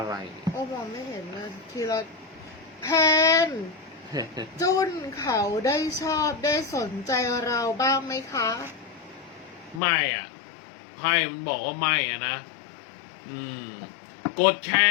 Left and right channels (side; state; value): right; drops out; at 9.8 s